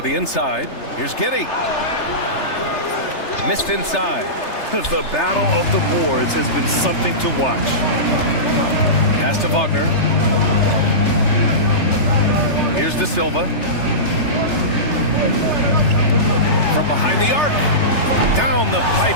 inside. Here's Giddey. Missed inside. The battle of the boards has been something to watch. Pass to Wagner. Here's De Silva. From behind the arc. Down the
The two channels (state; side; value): late; right; 3.3 ms